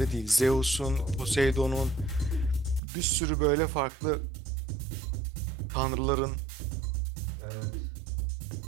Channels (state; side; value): drops out; left; at 2.8 s